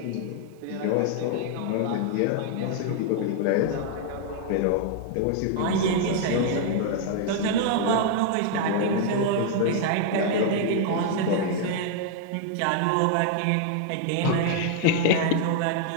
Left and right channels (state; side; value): different; both; correlation 0.00